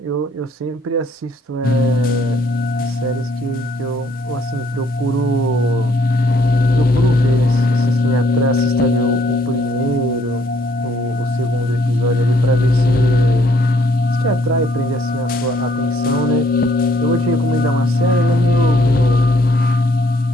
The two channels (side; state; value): both; normal; correlation 0.66